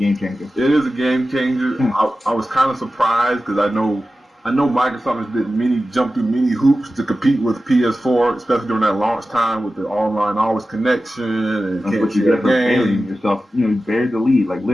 changer. It is a game changer. I was kind of surprised because I know Microsoft has jumped through many hoops to compete with PS4, especially during that launch time with the online always connection and can't share games. Yourself, you buried the lead, like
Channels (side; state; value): both; normal; correlation 0.94